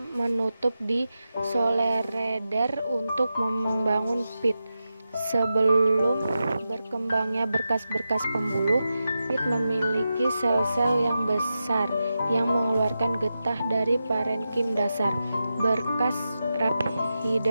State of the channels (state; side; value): inverted; both; correlation -0.91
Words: menutup di solereder untuk membangun pit. Sebelum berkembangnya berkas-berkas pembuluh, pit memiliki sel-sel yang besar yang mengeluarkan getah dari parenkim dasar. Berkas